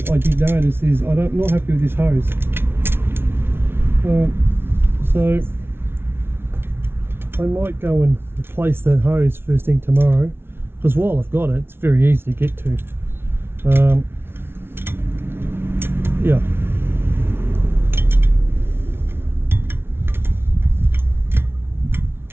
I did notice is I'm not happy with this hose. So I might go and replace that hose first thing tomorrow, because while I've got it, it's very easy to get to. Yeah.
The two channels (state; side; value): late; left; 0.11 ms